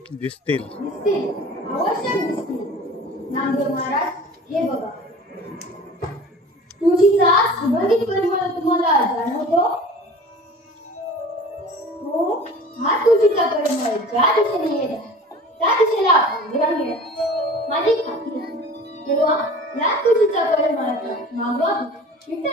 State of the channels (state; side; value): normal; both; correlation 0.42